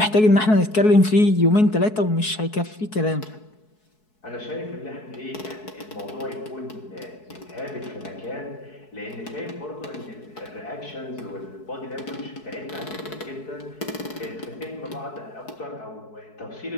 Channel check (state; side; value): late; right; 4.7 ms